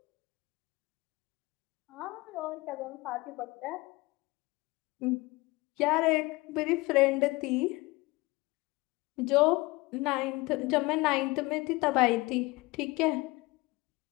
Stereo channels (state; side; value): quieter; right; 22.7 dB